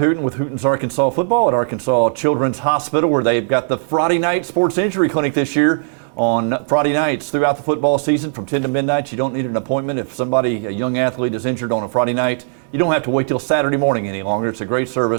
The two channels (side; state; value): left; silent; digital silence